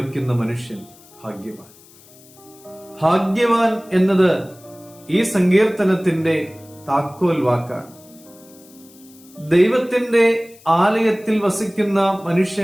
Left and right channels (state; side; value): noise; left; hiss, 25 dB below the sound